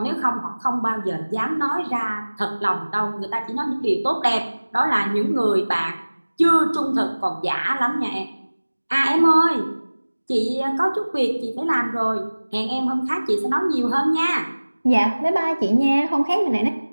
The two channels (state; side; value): inverted; both; correlation -1.00